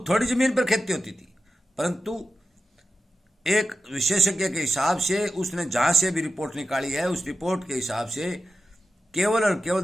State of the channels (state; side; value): normal; both; correlation 0.91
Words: थोड़ी जमीन पर खेती होती थी, परंतु एक विशेषज्ञ के हिसाब से उसने जहां से भी रिपोर्ट निकाली है, उस रिपोर्ट के हिसाब से केवल और